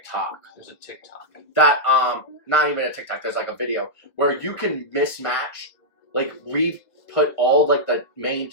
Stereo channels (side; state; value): right; late; 1.5 ms